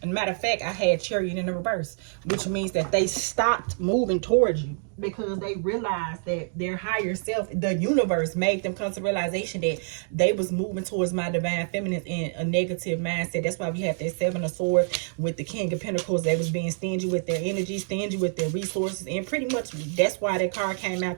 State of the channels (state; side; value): silent; left; 60 dB below the other